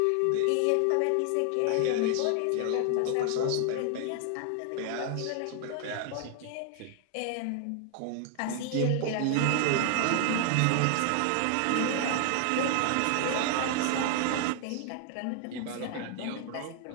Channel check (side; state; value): both; different; correlation 0.00